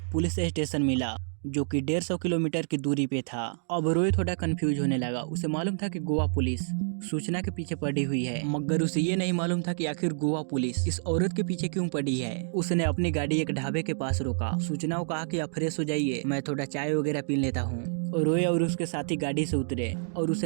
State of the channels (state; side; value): silent; left; digital silence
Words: पुलिस स्टेशन मिला जो कि 150 किलोमीटर की दूरी पे था। अब रोय थोड़ा कंफ्यूज होने लगा। उसे मालूम था कि गोवा पुलिस सूचना के पीछे पड़ी हुई है मगर उसे ये नहीं मालूम था कि आखिर गोवा पुलिस इस औरत के पीछे क्यों पड़ी है। उसने अपनी गाड़ी एक ढाबे के पास रोका। सूचना को कहा कि आप फ्रेश हो जाइए, मैं थोड़ा चाय वगैरह पी लेता हूँ। और रोय और उसके साथी गाड़ी से उतरे और